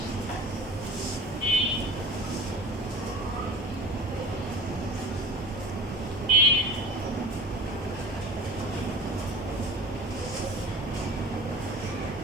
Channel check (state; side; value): normal; both; correlation 0.39